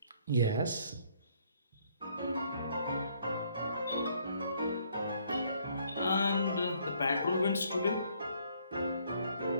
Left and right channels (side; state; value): both; inverted; correlation -0.65